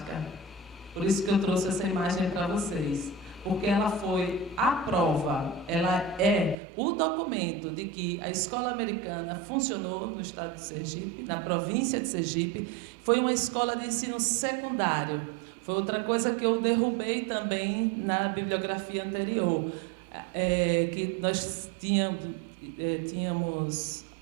Por isso que eu trouxe essa imagem para vocês. Porque ela foi a prova, ela é o documento de que a escola americana funcionou no estado de Sergipe, na província de Sergipe. Foi uma escola de ensino secundário. Foi outra coisa que eu derrubei também na bibliografia anterior. Que nós tínhamos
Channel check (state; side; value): drops out; left; at 6.6 s